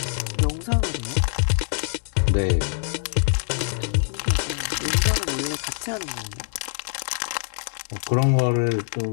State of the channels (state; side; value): silent; right; 62 dB below the other